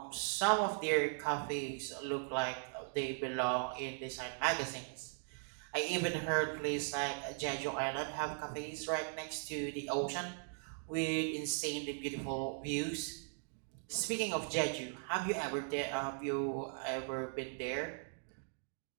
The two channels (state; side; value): silent; left; 52 dB below the other